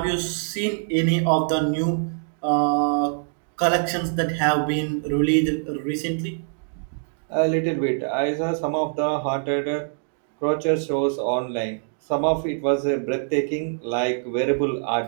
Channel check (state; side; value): silent; left; digital silence